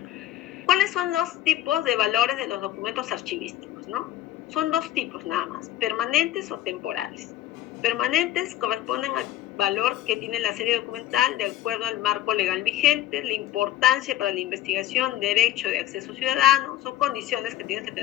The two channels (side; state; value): right; quieter; 13.5 dB